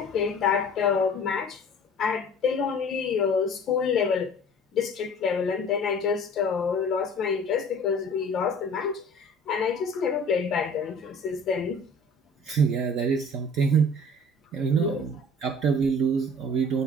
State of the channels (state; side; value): normal; both; correlation 0.46